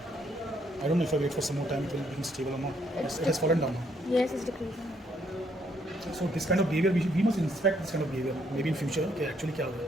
I don't know if I wait for some more time it will be stable और not. It has fallen down. Yes, it's decreasing. So this kind of behavior we must inspect this kind of behavior maybe in future कि actually क्या हो रहा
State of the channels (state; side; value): normal; both; correlation 0.70